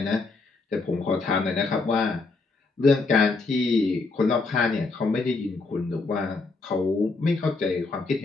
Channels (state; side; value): quieter; right; 3.8 dB